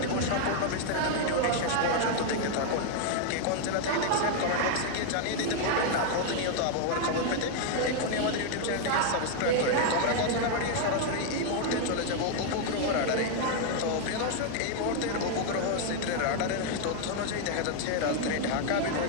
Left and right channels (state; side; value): different; both; correlation 0.00